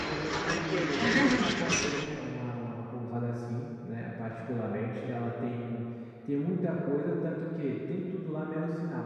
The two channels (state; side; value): identical; both; correlation 1.00